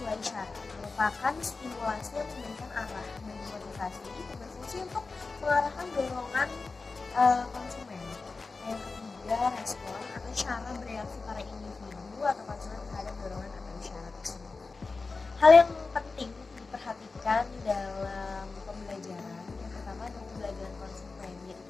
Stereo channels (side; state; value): right; quieter; 4.0 dB